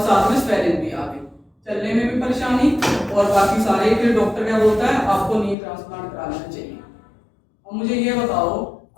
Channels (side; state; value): right; drops out; at 5.6 s